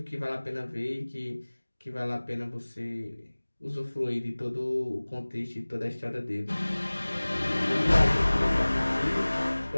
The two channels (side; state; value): both; inverted; correlation -1.00